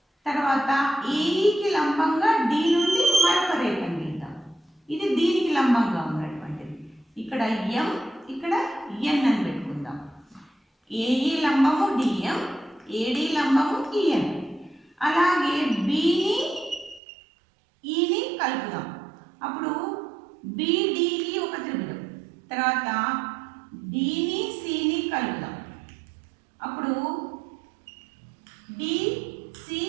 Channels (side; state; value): left; drops out; at 17.0 s